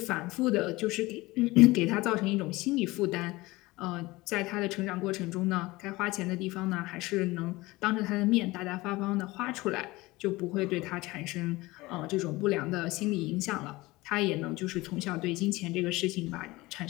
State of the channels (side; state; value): right; quieter; 20.7 dB